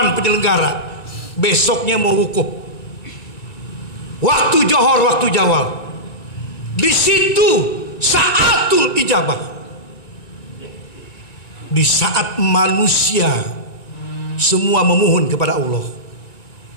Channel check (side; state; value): right; late; 1.9 ms